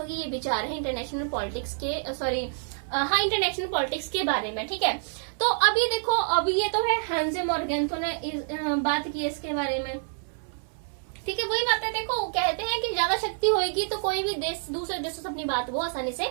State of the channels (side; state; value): left; silent; 60 dB below the other